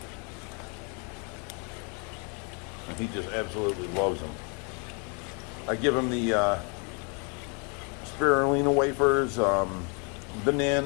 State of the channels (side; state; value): right; quieter; 35.6 dB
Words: And he just absolutely loves them. I give him the spirulina wafers,